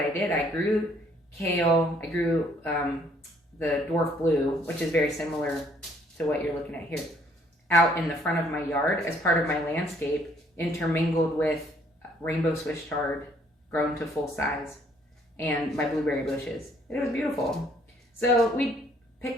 did. I grew kale. I grew the Dwarf blue, which is very similar to what you're looking at here, out in the front of my yard as part of my landscape, intermingled with rainbow Swiss chard grown to full size and my blueberry bushes. It was beautiful. So we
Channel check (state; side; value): normal; both; correlation 0.64